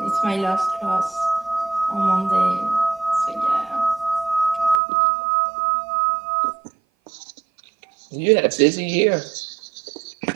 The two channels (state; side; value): drops out; left; at 4.8 s